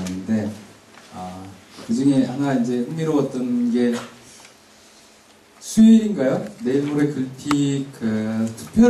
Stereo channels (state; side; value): identical; both; correlation 1.00